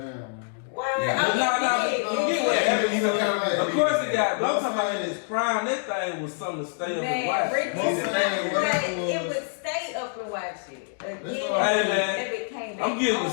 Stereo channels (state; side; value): silent; right; digital silence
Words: man. What? Of course it got, but I'm talking about in its prime, that thing was something to stay up and watch. It would stay up and watch it. Hey man, I'm getting